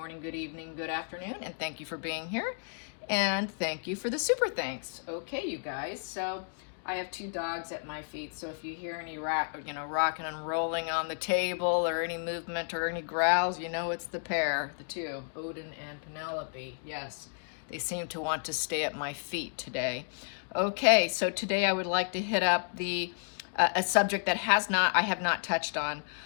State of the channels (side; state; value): right; silent; digital silence